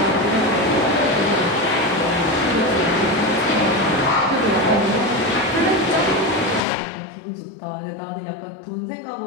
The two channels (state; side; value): drops out; right; at 6.7 s